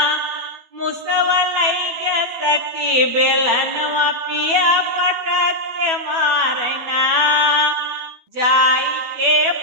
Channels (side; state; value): left; late; 13 ms